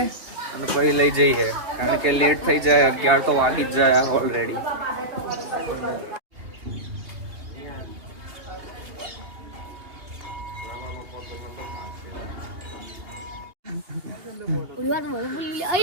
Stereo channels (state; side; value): late; left; 2.8 ms